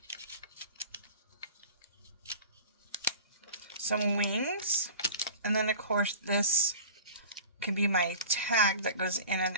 some wings. And then, of course, this can be my tag that goes in and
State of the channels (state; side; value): inverted; both; correlation -0.38